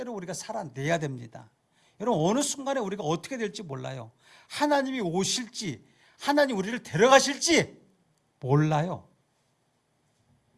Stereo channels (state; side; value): identical; both; correlation 1.00